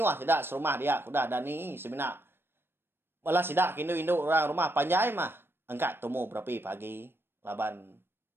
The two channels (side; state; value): left; late; 0.11 ms